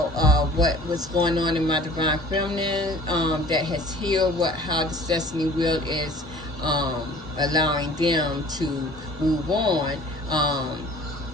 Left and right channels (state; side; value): normal; both; correlation 0.47